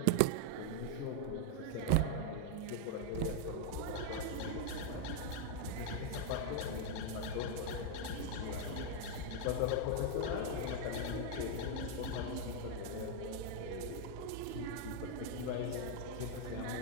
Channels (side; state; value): both; different; correlation 0.00